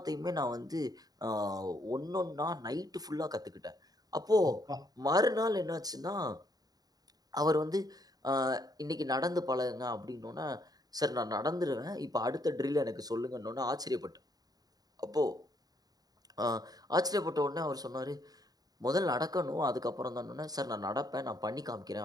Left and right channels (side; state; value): left; late; 0.18 ms